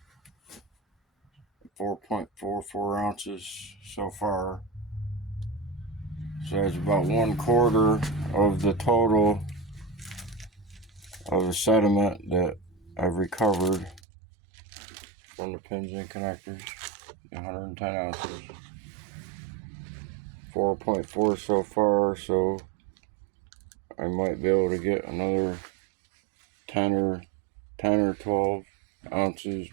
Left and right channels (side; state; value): left; drops out; at 14.0 s